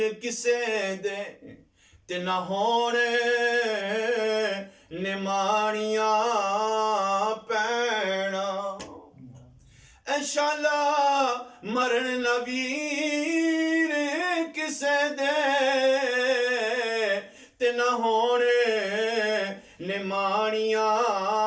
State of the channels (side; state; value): both; identical; correlation 1.00